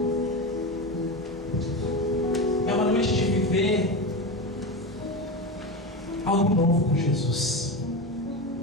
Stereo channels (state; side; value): normal; both; correlation 0.21